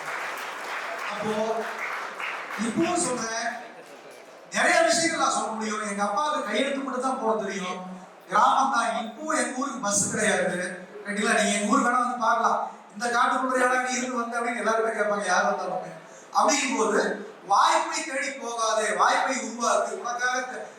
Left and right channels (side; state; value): both; identical; correlation 1.00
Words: அப்போ இப்போ சொல்றேன், நிறைய விஷயங்கள் நான் சொல்ல முடியும். எங்க அப்பாவுக்கு கையெழுத்து மட்டும் தான் போட தெரியும், கிராமம் தான். இப்போ எங்க ஊருக்கு பஸ் கிடையாது ரைட்டுங்களா. நீங்க எங்க ஊருக்கு வேணா வந்து பார்க்கலாம், இந்த காட்டுக்குள்ள இடம் நீ இருந்து வந்து அப்படின்னு எல்லாருமே கேட்பாங்க, யார் வந்தாலும். அப்படிங்கும் போது வாய்ப்பை தேடி போகாதே, வாய்ப்பை உருவாக்கு.